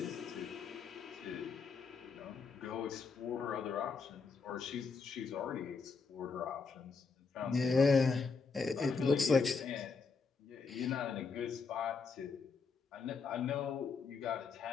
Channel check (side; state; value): right; quieter; 4.9 dB